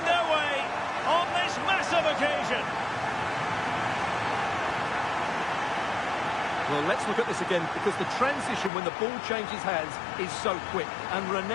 their way on this massive of occasion. Well, let's look at this again, because the transition when the ball changes hands is so quick. And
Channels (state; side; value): drops out; right; at 8.7 s